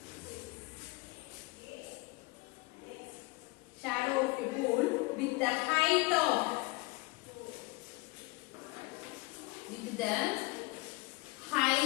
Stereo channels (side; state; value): right; quieter; 23.2 dB